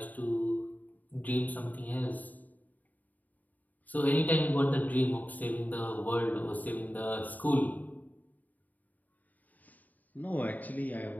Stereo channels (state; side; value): late; right; 0.080 ms